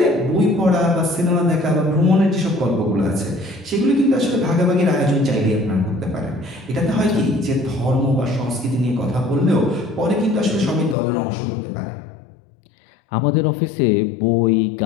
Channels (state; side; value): drops out; right; at 11.0 s